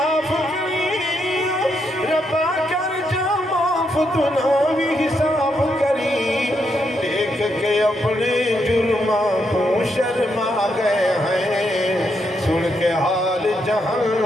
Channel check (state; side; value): normal; both; correlation 0.79